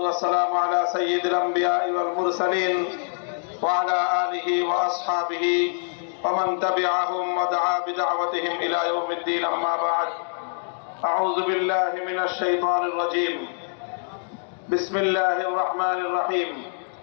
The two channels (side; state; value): right; silent; digital silence